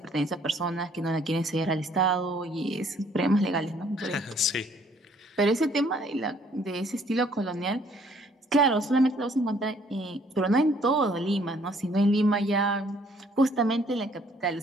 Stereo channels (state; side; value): normal; both; correlation 0.62